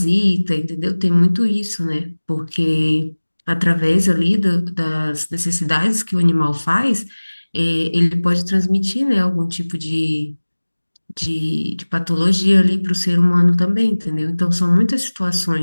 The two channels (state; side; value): inverted; both; correlation -1.00